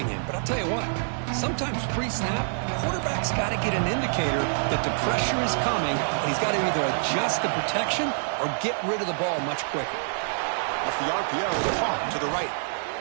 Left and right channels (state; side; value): silent; left; digital silence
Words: him? But I'll tell you what, sometimes pre-snap, the quarterback's got to get an indicator that the pressure is coming, and he's got to either adjust the protection or get rid of the ball much quicker. Off the RPO, caught to the right.